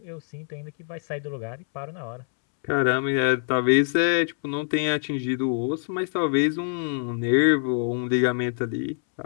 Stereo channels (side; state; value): right; silent; 62 dB below the other